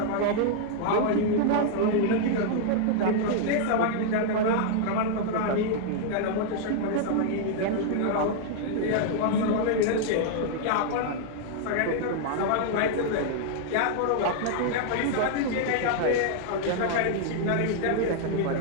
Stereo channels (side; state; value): both; different; correlation -0.01